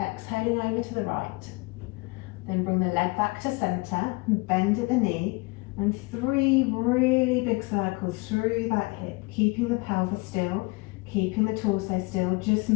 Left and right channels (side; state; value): right; quieter; 25.8 dB